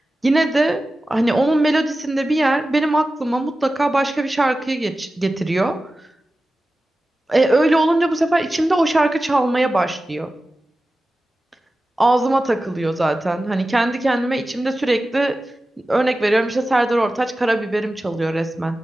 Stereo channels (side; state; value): both; normal; correlation 0.95